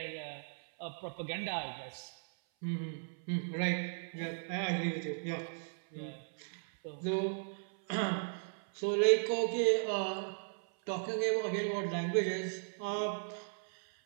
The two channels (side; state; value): left; silent; 53 dB below the other